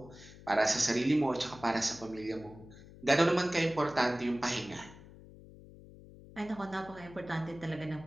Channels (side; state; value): left; noise; hum, 19 dB below the sound